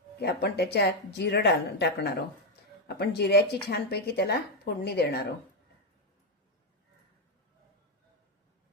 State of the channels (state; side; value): normal; both; correlation 0.03